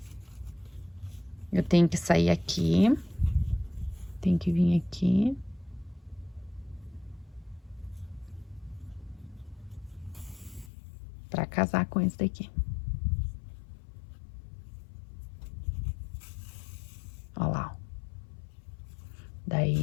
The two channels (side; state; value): right; drops out; at 10.7 s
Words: Eu tenho que sair aqui. Tem que vir aqui. Pra casar com esse daqui. Ó lá, ó.